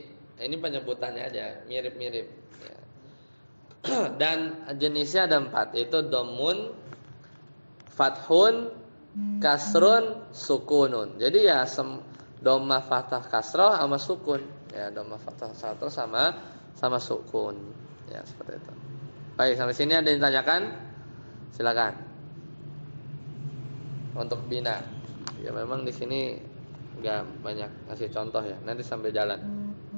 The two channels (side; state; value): both; inverted; correlation -1.00